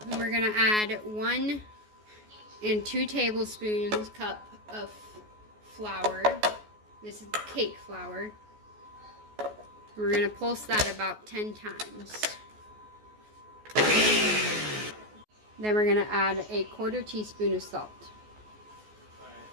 And we're going to add 1 and 2 tablespoons cup of flour. This is cake flour. We're going to pulse that about 10 times. Then we're going to add a 1/4 teaspoon of salt.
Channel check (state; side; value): late; left; 14 ms